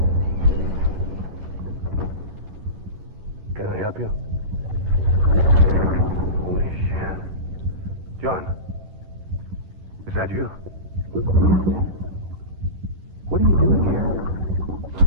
Can I help you? Holy shit. John, is that you? What are you doing here?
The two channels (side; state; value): left; late; 11 ms